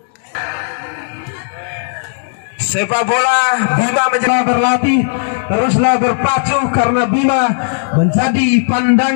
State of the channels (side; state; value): right; silent; digital silence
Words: sepak bola Bima menjadi berlatih teruslah berpacu karena Bima menjadi